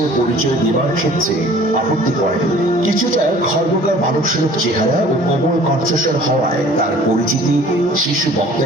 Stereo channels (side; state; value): both; normal; correlation 0.50